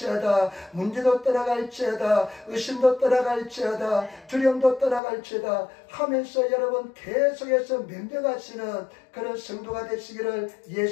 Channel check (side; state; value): right; drops out; at 5.0 s